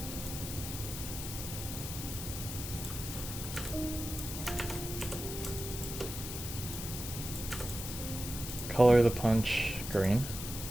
Color the punch green.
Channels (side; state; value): left; noise; hiss, 7 dB below the sound